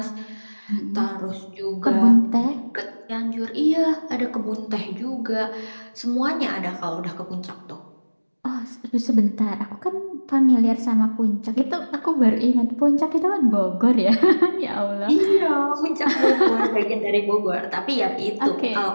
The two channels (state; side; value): inverted; both; correlation -1.00